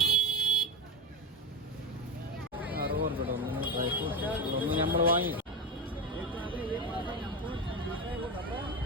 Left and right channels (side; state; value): both; normal; correlation 0.15